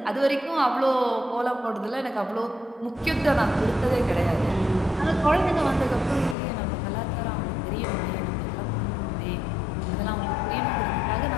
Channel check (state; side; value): drops out; right; at 6.4 s